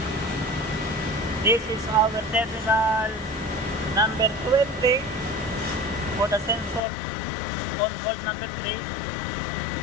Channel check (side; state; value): right; drops out; at 6.8 s